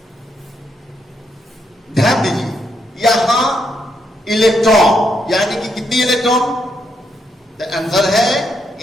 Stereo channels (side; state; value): both; normal; correlation 0.78